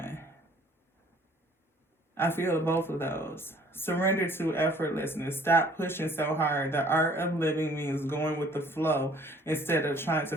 I feel both of those. Surrender to effortlessness. Stop pushing so hard. The art of living means going with the flow instead of trying to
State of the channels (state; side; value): normal; both; correlation 0.56